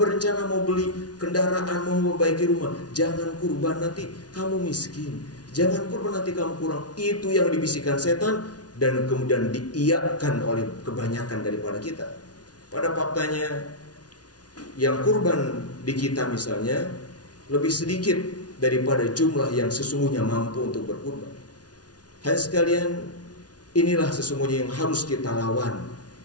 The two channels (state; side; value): late; right; 0.69 ms